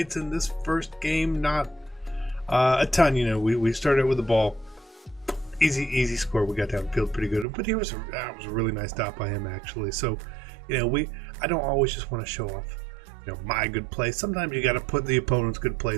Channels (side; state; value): left; drops out; at 7.5 s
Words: in this first game. Not a ton, you know. We started with the ball, easy score. We got downfield pretty good, but that was a really nice stop by him actually. So, you know, I don't always just want to show off, you know, my good play. Sometimes you got to put the opponent's good